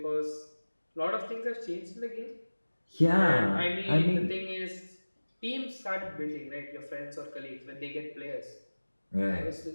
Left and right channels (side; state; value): both; inverted; correlation -1.00